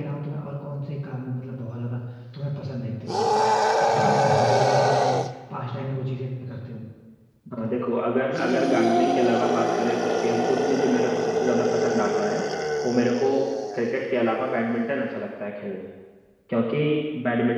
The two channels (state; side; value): identical; both; correlation 1.00